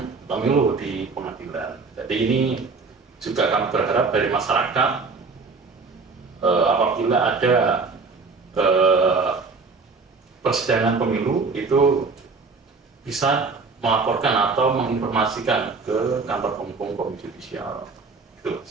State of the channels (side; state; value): left; quieter; 4.4 dB